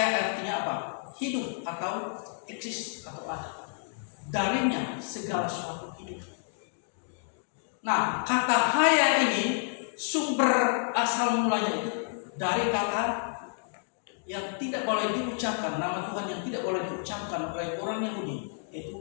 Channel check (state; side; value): silent; right; digital silence